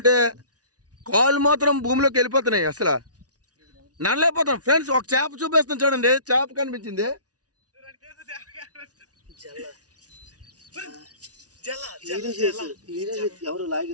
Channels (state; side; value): late; left; 0.68 ms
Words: కాళ్ళు మాత్రం భూమిలోకి వెళ్ళిపోతున్నాయి. అసలు నడలేకపోతాం. ఫ్రెండ్స్, ఒక చేప చూపిస్తాం చూడండి. చేప కనిపించింది.